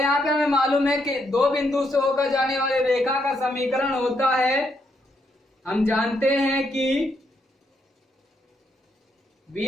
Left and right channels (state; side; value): normal; both; correlation 0.77